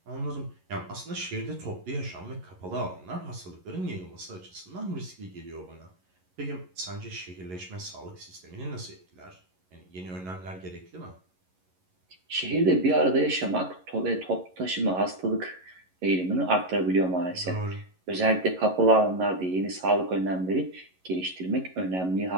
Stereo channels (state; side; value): late; left; 11 ms